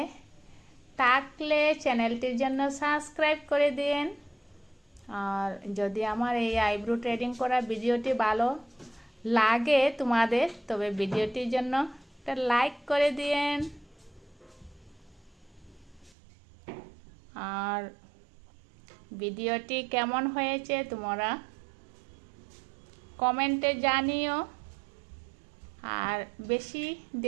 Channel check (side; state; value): left; drops out; at 16.2 s